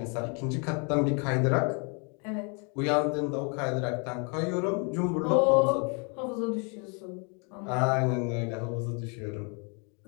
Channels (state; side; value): quieter; right; 35.7 dB